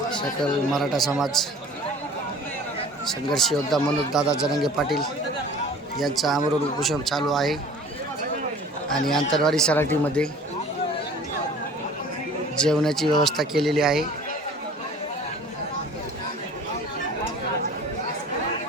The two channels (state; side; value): normal; both; correlation 0.46